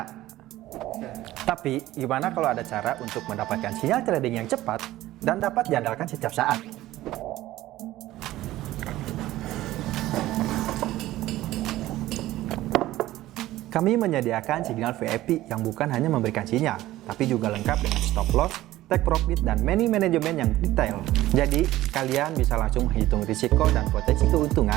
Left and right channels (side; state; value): left; quieter; 15.7 dB